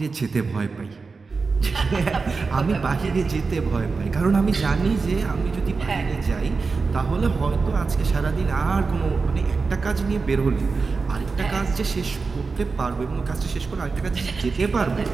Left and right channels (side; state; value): left; quieter; 4.4 dB